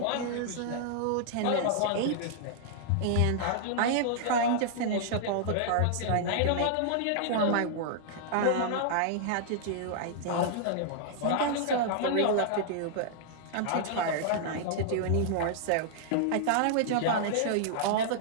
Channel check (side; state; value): both; different; correlation -0.01